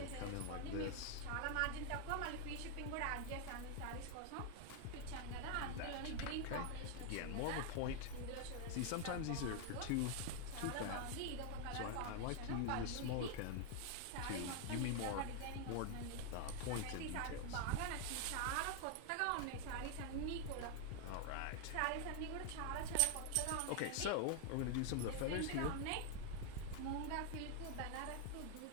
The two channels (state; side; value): different; both; correlation 0.00